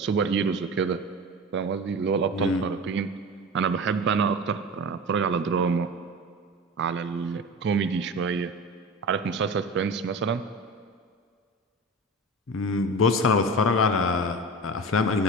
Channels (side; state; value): both; normal; correlation 0.31